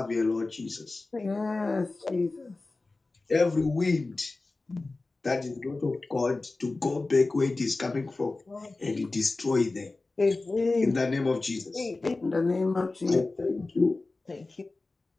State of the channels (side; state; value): right; quieter; 3.4 dB